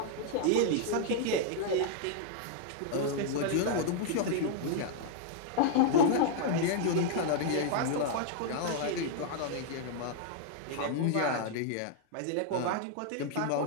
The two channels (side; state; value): both; different; correlation -0.01